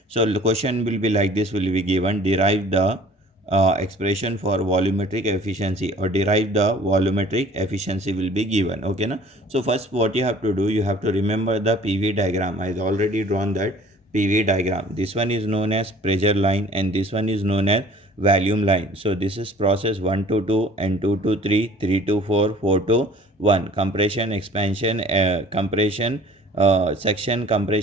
So the question will be like this: will be given derive the expression for volumetric efficiency or derive the volumetric efficiency will be given. Okay, na? So first, what you have to do, you have to remember the PV diagram. I already drawn that PV diagram. This one is known as pressure line, and this one is known as volume line. So this is process 1 to 2 and 2 to 3, 3 to 4, 4 to 1. Compression, expansion, section,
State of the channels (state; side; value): normal; both; correlation 0.50